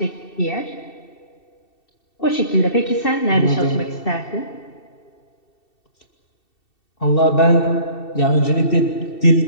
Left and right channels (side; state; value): right; late; 2.7 ms